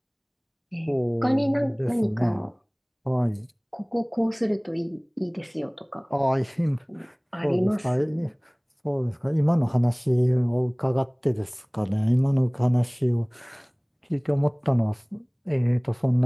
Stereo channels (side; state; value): both; identical; correlation 1.00